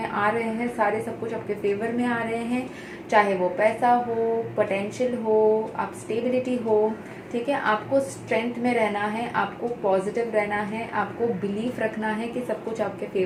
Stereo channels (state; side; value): identical; both; correlation 1.00